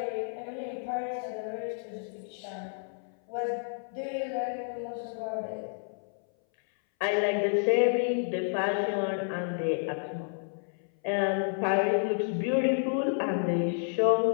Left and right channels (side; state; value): right; silent; 58 dB below the other